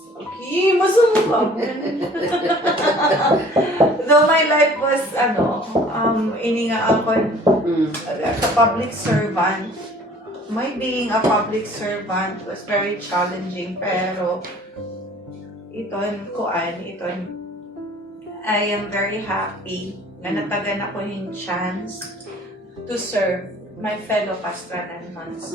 Okay, masama ka. Though my life was, ininga ako as a public servant. My being a public servant was very challenging, pero I am very happy na natagan ako yung chance to serve my fellow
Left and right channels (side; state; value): both; normal; correlation 0.51